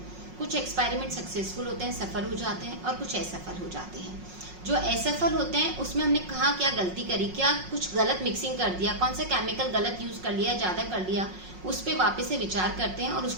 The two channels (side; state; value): left; late; 5.5 ms